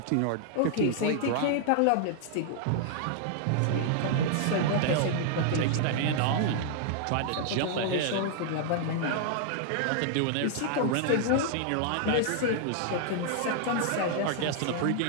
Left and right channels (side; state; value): both; different; correlation 0.00